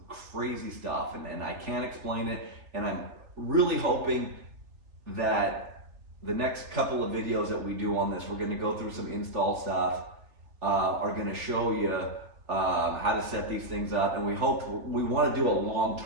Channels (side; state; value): left; late; 3.4 ms